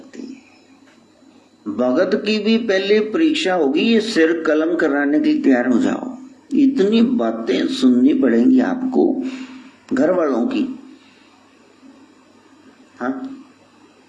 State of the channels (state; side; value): identical; both; correlation 1.00